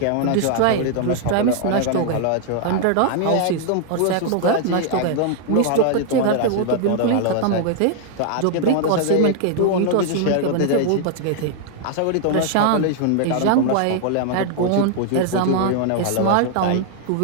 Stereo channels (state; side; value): different; both; correlation 0.00